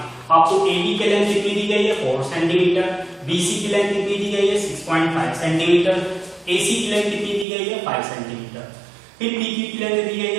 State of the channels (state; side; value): drops out; left; at 7.5 s